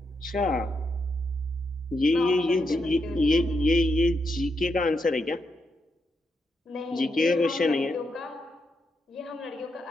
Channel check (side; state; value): both; normal; correlation 0.82